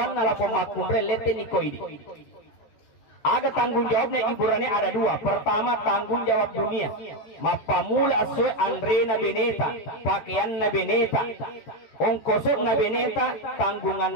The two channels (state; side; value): late; right; 14 ms